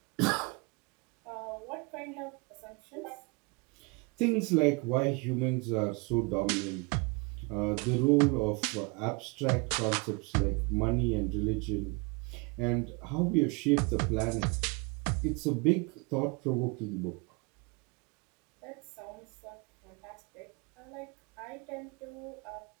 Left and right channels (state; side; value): quieter; left; 29.1 dB